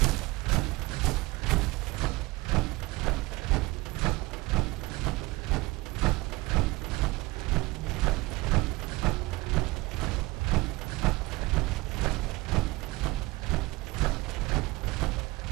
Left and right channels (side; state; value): left; quieter; 21.9 dB